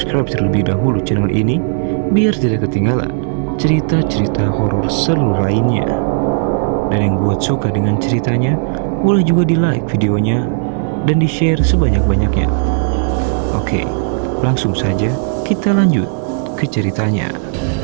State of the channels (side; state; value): left; silent; digital silence